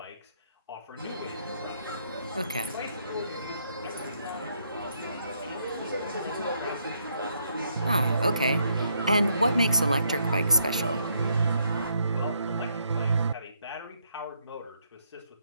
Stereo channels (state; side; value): inverted; both; correlation -0.72